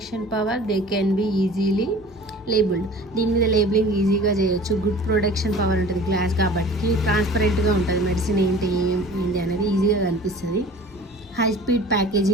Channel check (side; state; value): both; normal; correlation 0.44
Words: power, they can be easily labeled. దీని మీద labelling ఈజీగా చేయొచ్చు. Good protection power ఉంటుంది glass కాబట్టి, ట్రాన్స్పరెంట్గా ఉంటుంది, medicine ఏంటి అనేది ఈజీగా కనిపిస్తుంది. హై స్పీడ్